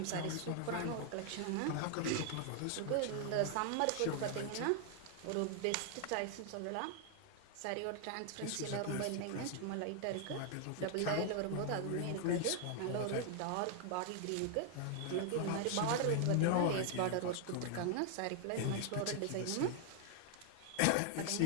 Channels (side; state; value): both; different; correlation 0.00